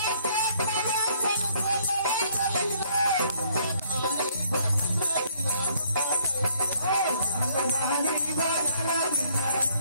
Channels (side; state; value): both; inverted; correlation -0.64